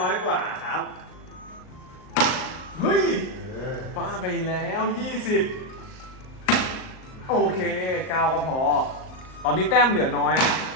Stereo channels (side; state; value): right; late; 38 ms